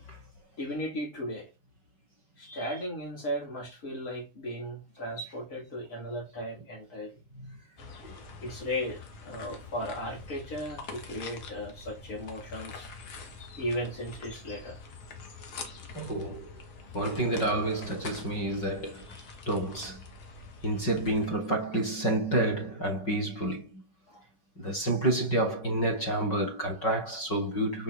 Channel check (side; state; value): right; late; 5.4 ms